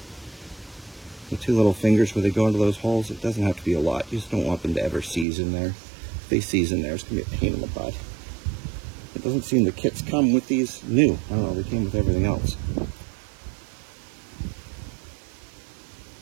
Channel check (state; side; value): drops out; left; at 5.2 s